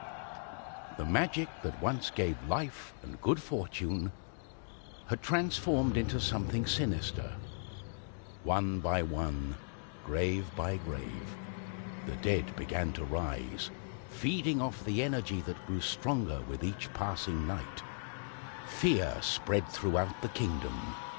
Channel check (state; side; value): silent; right; digital silence